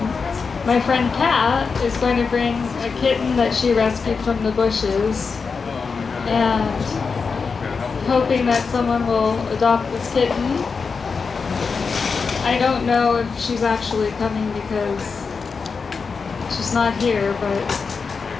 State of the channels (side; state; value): right; quieter; 5.1 dB